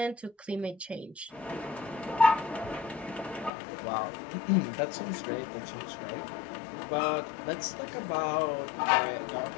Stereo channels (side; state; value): right; drops out; at 3.5 s